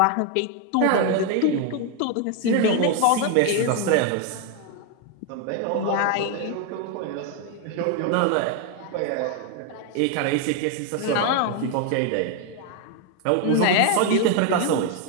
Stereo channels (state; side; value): different; both; correlation 0.01